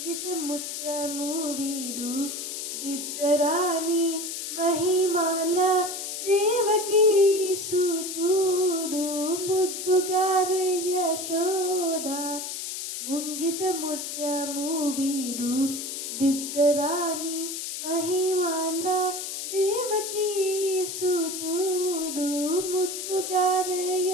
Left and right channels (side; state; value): left; noise; hiss, 5 dB below the sound